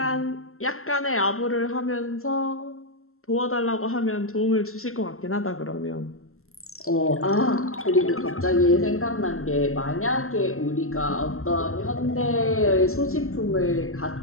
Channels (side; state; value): right; late; 0.62 ms